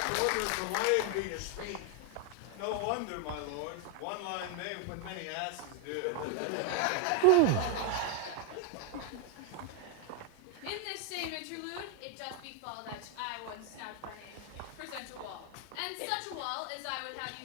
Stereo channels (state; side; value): different; both; correlation 0.01